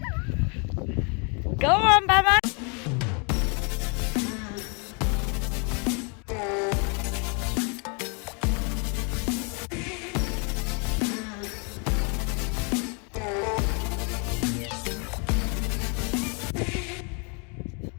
Go on, Mama!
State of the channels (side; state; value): right; quieter; 35.5 dB